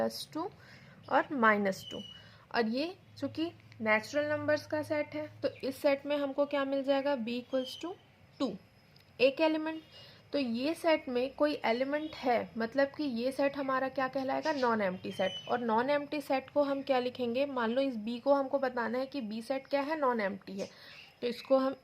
और -2। और ये चूंकि नेचुरल नंबर्स का सेट है, तो इस सेट में हमको क्या मिल जाएगा? b इक्वल्स टू 2, एक एलिमेंट। तो ये सेट में कोई एलिमेंट है, मतलब कि ये सेट हमारा क्या कहलाएगा? Non empty set. और नॉन एम्प्टी सेट को हम क्या लिखेंगे? मान लो इस b को हमको बताना है कि b सेट क्या है? नॉन एम्प्टी है। तो इसको हम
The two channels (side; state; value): both; identical; correlation 1.00